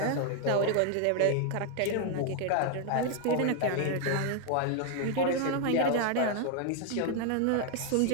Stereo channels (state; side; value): different; both; correlation 0.00